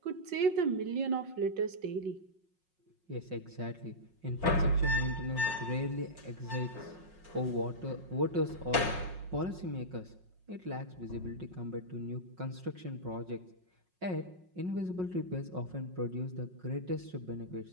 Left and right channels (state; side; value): late; left; 5.5 ms